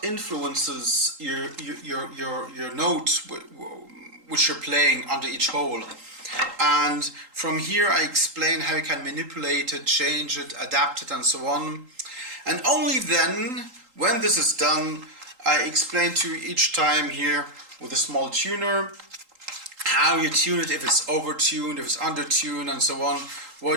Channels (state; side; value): late; left; 3.8 ms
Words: influences your notes which you're playing under each hole. And from here I explain how you can manipulate it, change it, adapt it, and so on. And only then, when this is done, I explain to you each time here with a small tuner how you tune it, if it's over-tuned, if it's under-tuned, and so on,